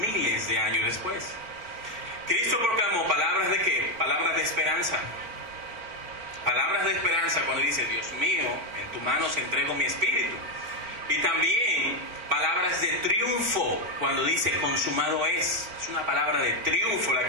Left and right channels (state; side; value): late; left; 4.4 ms